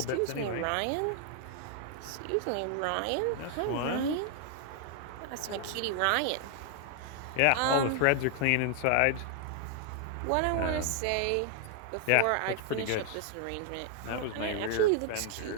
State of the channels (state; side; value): different; both; correlation 0.00